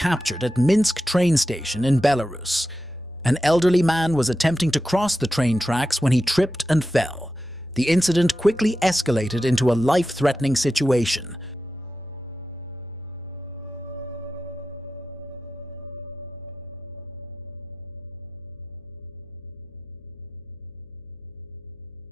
at Minsk train station in Belarus. An elderly man was attempting to cross the train tracks when he tripped and fell. The incident quickly escalated into a life-threatening situation.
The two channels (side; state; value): left; noise; hum, 27 dB below the sound